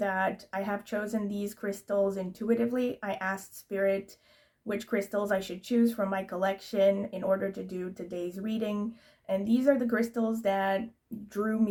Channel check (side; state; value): both; identical; correlation 1.00